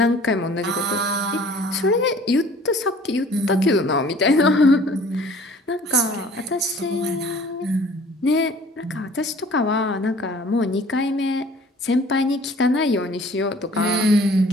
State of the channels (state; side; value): normal; both; correlation 0.51